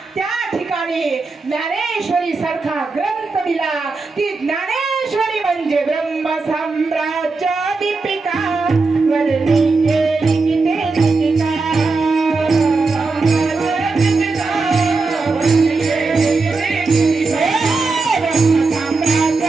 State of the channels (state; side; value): quieter; left; 3.9 dB